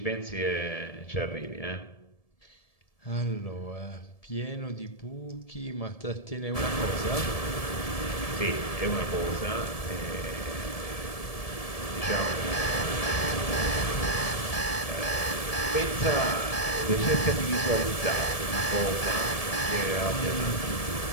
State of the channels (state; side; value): late; right; 1.7 ms